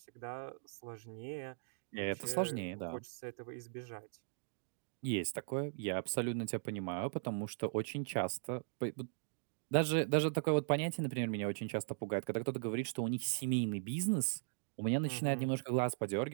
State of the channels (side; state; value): left; silent; digital silence